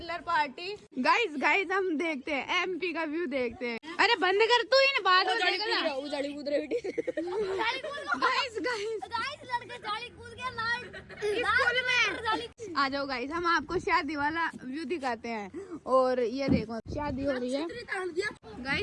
पार्टी। गाइस हम देखते हैं एमपी का व्यू देखते हैं। अरे बंद कर तू इन बात गाइस लड़के जाली कूद गया स्कूल में। आ जाओ गाइस, हम आपको शादी वाला व्यू दिखाते हैं। और ये देखो शादी हो रही है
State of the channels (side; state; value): both; identical; correlation 1.00